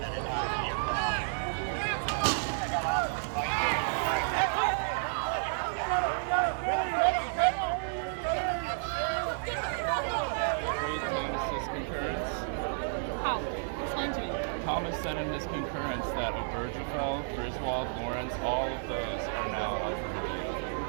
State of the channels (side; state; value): left; silent; digital silence